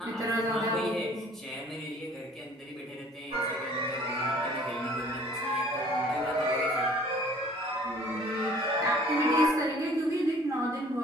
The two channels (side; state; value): both; normal; correlation 0.53